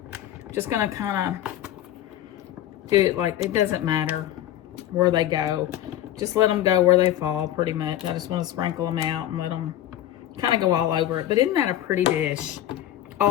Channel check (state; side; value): quieter; right; 12.4 dB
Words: Just going to kind of do it like, it doesn't matter where they go. Just let them go where they fall, pretty much. I just want to sprinkle them out and let them kind of go all over it. But isn't that a pretty dish